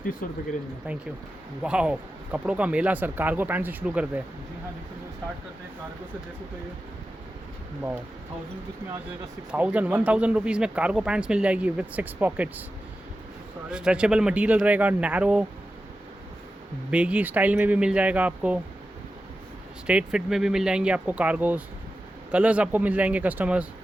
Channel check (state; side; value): normal; both; correlation 0.92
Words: रुपये की रेंज में। Thank you. वाह, कपड़ों का मेला सर। कार्गो पैंट से शुरू करते हैं। जी हाँ, देखो स्टार्ट करते हैं कार्गो से। जैसे तो ये वाह, 1000 रुपीज़ में आ जाएगा 1000 रुपीज़ में कार्गो पैंट्स मिल जाएगी विद 6 पॉकेट्स। स्ट्रेचेबल मटेरियल रहेगा, नैरो बेगी स्टाइल में भी मिल जाएगा आपको, स्ट्रेट फिट में भी मिल जाएंगे आपको कार्गोज। कलर्स आपको मिल जाएंगे कस्टमर्स।